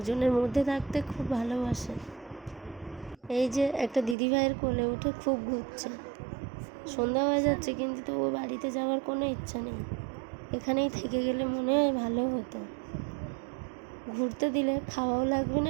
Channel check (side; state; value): left; drops out; at 4.2 s